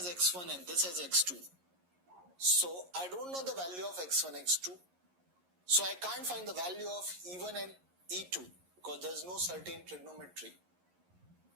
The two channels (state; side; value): late; left; 11 ms